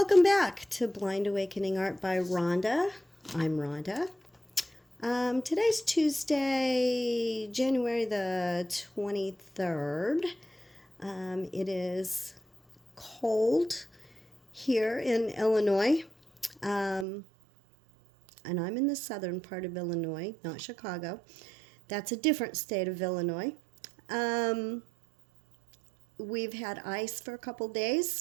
back to Blind Awakening Art by Rhonda. I'm Rhonda. Today's Tuesday, January the 23rd. It is cold here in Illinois, and I'm in the southern part of Illinois, not Chicago. That's a different state of Illinois. We've had ice for a couple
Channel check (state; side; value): drops out; left; at 17.1 s